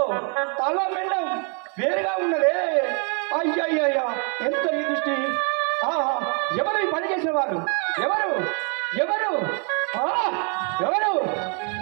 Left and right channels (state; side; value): quieter; left; 38.9 dB